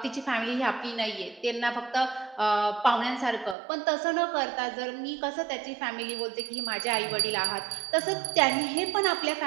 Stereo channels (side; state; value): left; drops out; at 3.6 s